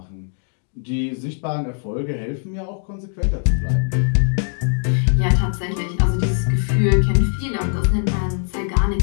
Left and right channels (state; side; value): silent; right; digital silence